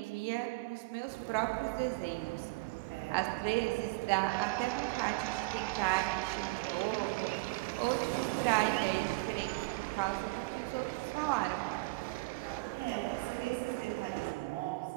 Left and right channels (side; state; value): left; quieter; 24.3 dB